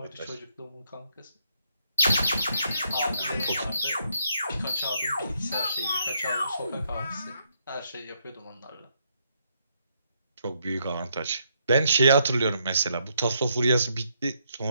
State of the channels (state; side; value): inverted; both; correlation -0.75